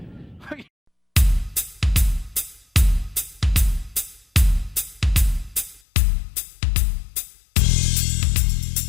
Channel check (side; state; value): right; drops out; at 5.8 s